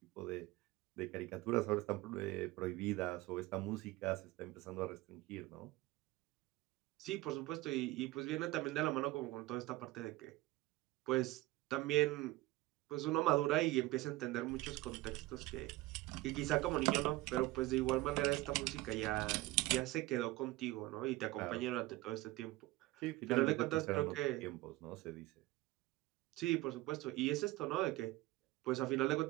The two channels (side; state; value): left; quieter; 18.6 dB